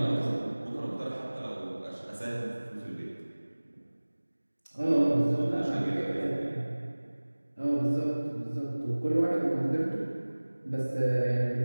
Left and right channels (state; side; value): inverted; both; correlation -1.00